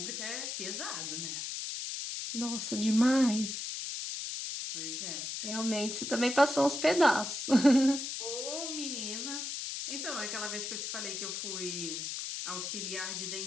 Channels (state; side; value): noise; left; hiss, 4 dB below the sound